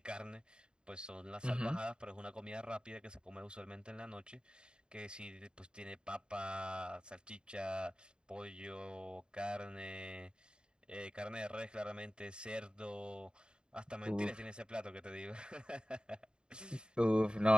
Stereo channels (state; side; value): late; left; 0.050 ms